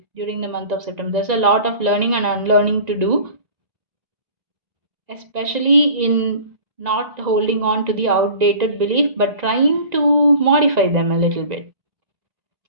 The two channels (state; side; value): late; left; 1.9 ms